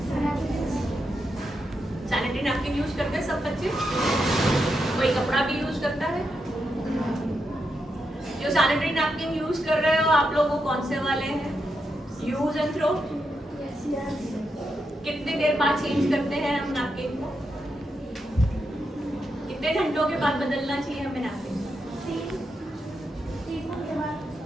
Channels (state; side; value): normal; both; correlation 0.84